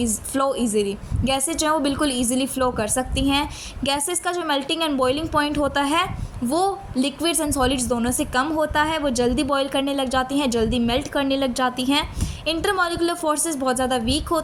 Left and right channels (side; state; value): both; identical; correlation 1.00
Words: easily. Gases जो है वो बिल्कुल ईजिली फ्लो कर सकती हैं। गैसेस का जो मेल्टिंग एंड बॉइलिंग पॉइंट होता है वो लिक्विड्स एंड सॉलिड्स दोनों से कम होता है, वो जल्दी बॉयल करने लग जाती हैं, जल्दी मेल्ट करने लग जाती हैं। इंटरमॉलिकुलर फोर्सेस बहुत ज़्यादा वीक